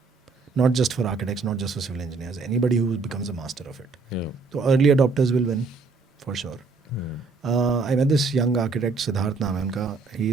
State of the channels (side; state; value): left; quieter; 4.3 dB